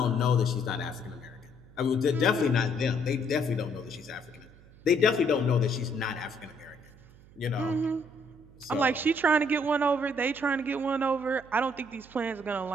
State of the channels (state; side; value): noise; right; hum, 24 dB below the sound